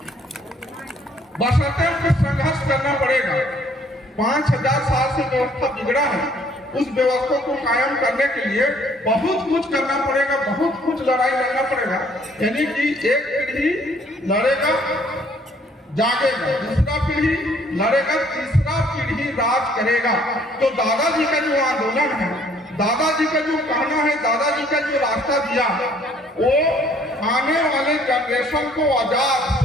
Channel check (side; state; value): both; normal; correlation 0.61